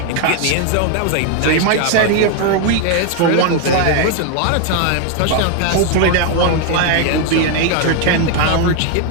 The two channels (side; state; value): both; different; correlation 0.01